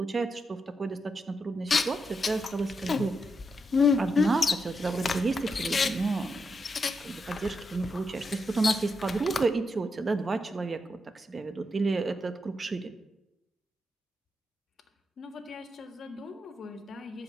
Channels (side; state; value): both; normal; correlation 0.83